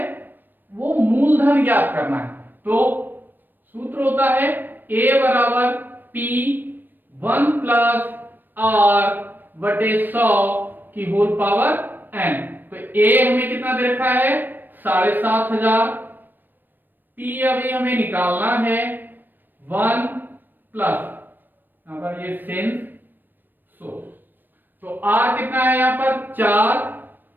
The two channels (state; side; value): late; left; 0.092 ms